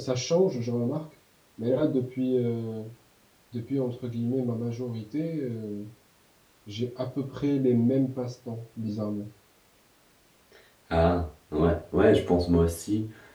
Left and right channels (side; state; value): both; identical; correlation 1.00